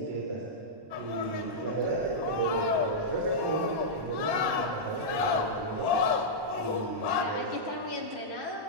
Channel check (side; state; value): left; late; 1.1 ms